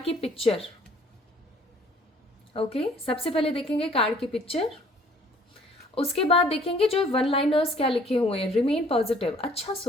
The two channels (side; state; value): both; normal; correlation 0.56